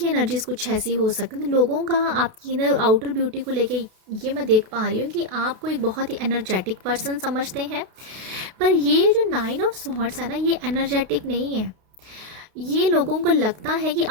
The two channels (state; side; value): late; left; 32 ms